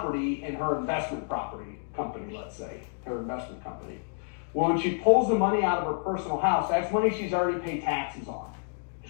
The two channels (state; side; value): silent; right; digital silence